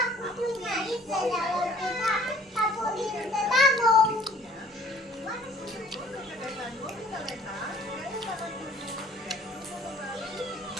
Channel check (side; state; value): both; normal; correlation 0.54